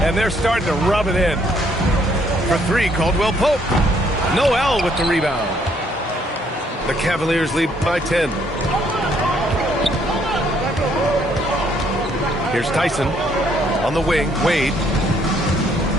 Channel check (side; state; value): both; normal; correlation 0.67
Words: and they're starting to rub it in. For three, Caldwell Pope. Noel with the rebound. The Cavaliers lead by 10. Here's Tyson on the wing. Wade.